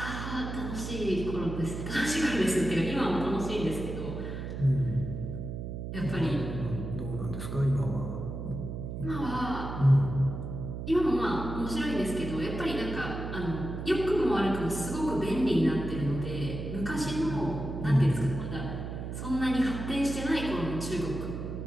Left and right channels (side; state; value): right; noise; hum, 6 dB below the sound